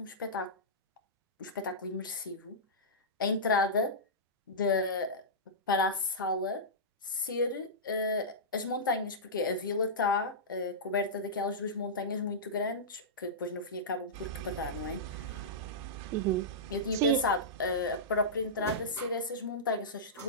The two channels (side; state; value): both; normal; correlation -0.15